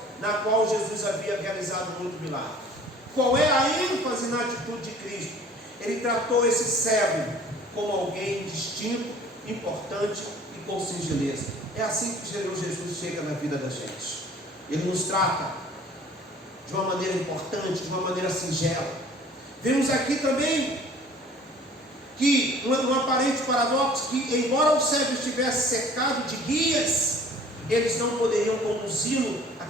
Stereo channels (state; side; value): normal; both; correlation 0.50